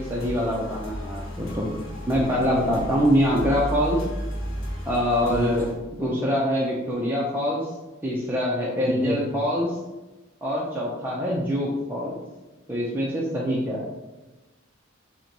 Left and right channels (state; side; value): normal; both; correlation 0.56